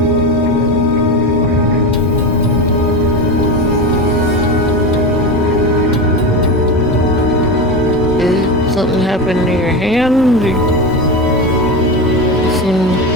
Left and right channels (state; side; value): normal; both; correlation 0.20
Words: Did something happen to your hand? You seem